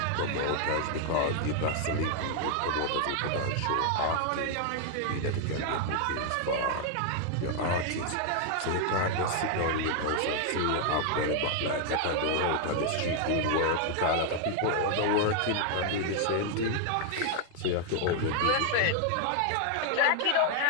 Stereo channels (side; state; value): both; different; correlation 0.00